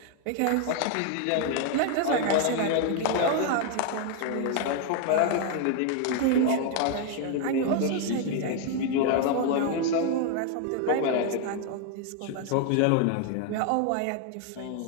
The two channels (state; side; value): different; both; correlation 0.00